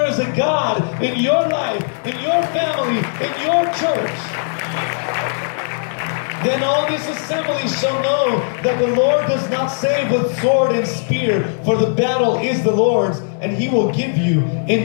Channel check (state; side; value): silent; right; digital silence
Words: is a God in your life, in your family, in your church. Then all this assembly shall know that the Lord does not save with sword and spear, for the battle is the Lord's, and He will give you